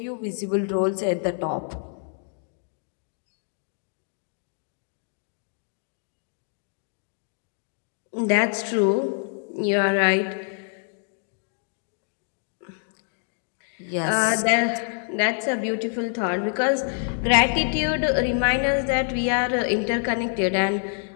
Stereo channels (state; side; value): silent; right; 61 dB below the other